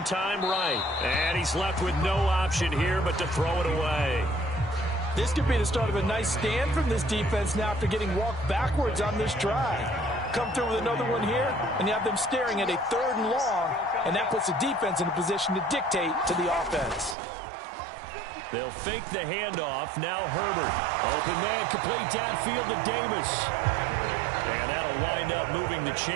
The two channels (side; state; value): left; drops out; at 17.2 s